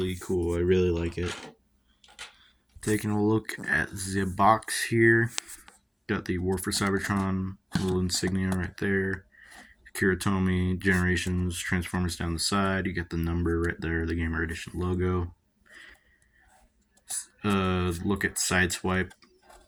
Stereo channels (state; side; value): identical; both; correlation 1.00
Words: cool, I really like it. Taking a look at the box here, got the War for Cybertron little insignia right there. Kiritomi, Generations, Transformers down the side, you get the number right there, the Gamer Edition logo. Look at Sideswipe,